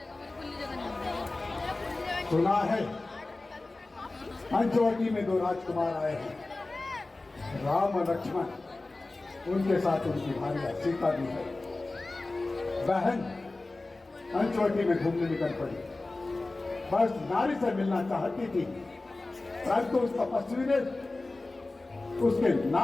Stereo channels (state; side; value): quieter; right; 3.2 dB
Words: सुना है पंचवटी में 2 राजकुमार आए हैं, राम और लक्ष्मण, उनके साथ उनकी भार्या सीता भी है। बहन पंचवटी में घूमने निकल पड़ी, बस नारी से मिलना चाहती थी, परंतु उस तपस्वी ने उसके